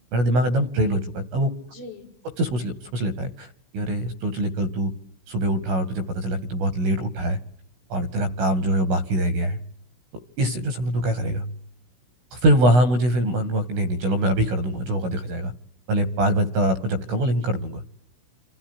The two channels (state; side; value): late; left; 16 ms